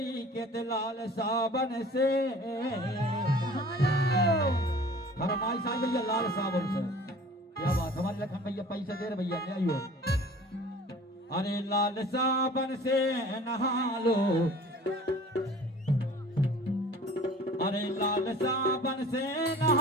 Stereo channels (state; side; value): normal; both; correlation 0.46